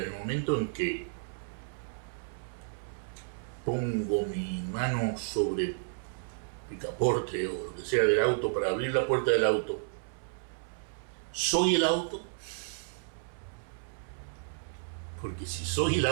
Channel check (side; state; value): left; silent; 56 dB below the other